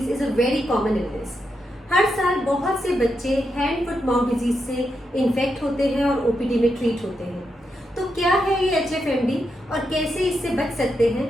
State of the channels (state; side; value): normal; both; correlation 0.84